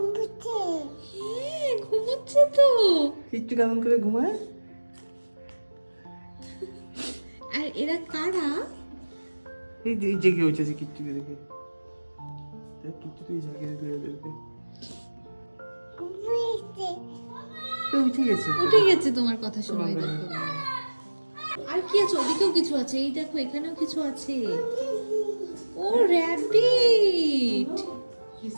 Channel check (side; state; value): both; inverted; correlation -1.00